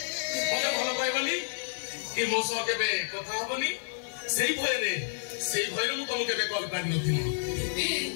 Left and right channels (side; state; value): right; silent; 55 dB below the other